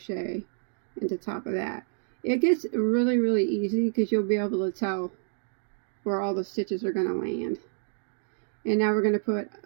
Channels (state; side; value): silent; left; digital silence